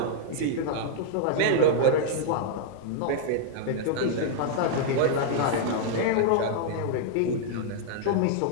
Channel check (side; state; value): both; different; correlation -0.01